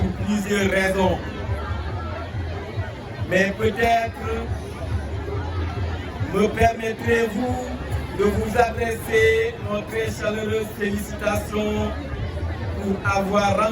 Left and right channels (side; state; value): both; identical; correlation 1.00